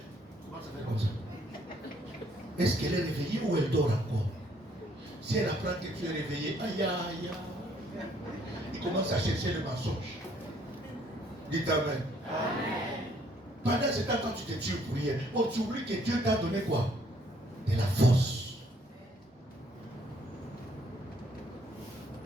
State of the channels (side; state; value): both; normal; correlation 0.65